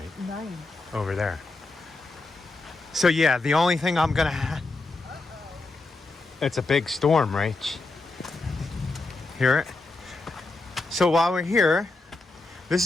Nice. Over there. So yeah, the only thing I'm going to have... It's a big storm, Rach. Hear it? So while we're here, this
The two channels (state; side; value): quieter; right; 3.3 dB